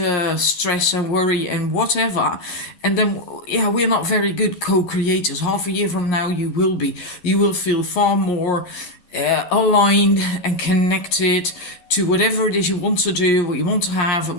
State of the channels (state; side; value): late; right; 11 ms